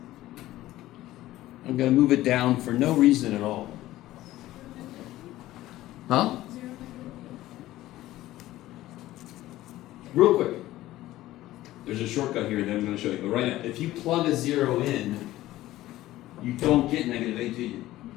I'm going to move it down for no reason at all. Huh? Real quick. There's a shortcut here that I'm going to show you. But right now, if you plug a 0 in, you don't get -8, do you?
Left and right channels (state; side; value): quieter; right; 15.6 dB